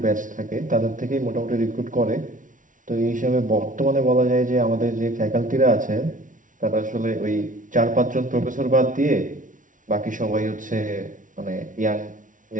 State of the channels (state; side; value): late; left; 0.38 ms